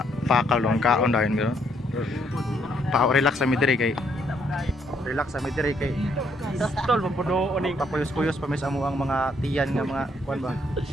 pakal lang kaon dahil gano'n. Relax sa midiri kay. Relax sa midiri kay. Tol mampuno oning Papuyos-puyos pa mis amo ang mga tiyan nga mga kuan ba.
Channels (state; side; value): normal; both; correlation 0.71